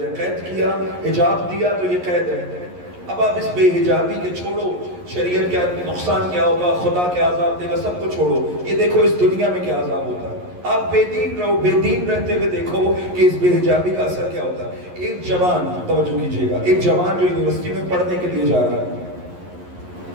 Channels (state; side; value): late; left; 11 ms